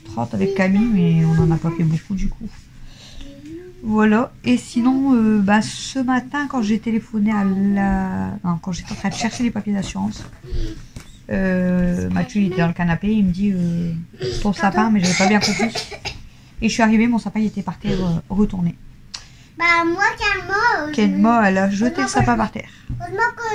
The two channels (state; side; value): identical; both; correlation 1.00